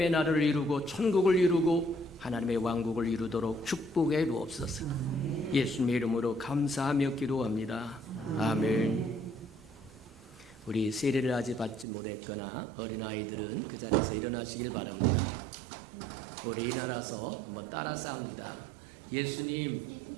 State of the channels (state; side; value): drops out; left; at 11.9 s